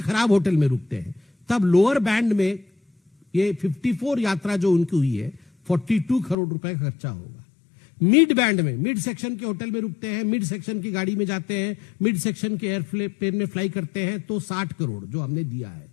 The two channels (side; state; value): right; drops out; at 6.4 s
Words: खराब होटल में रुकते हैं, तब लोअर बैंड में ये 54 यात्रा जो उनकी हुई है 42 करोड़ रुपए का खर्चा होगा। मिड बैंड में, मिड सेक्शन के होटल में रुकते हैं, मिड सेक्शन की गाड़ी में जाते हैं, मिड सेक्शन के एयरप्लेन में फ्लाई करते हैं, तो 60 करोड़ जो हमने दिया है,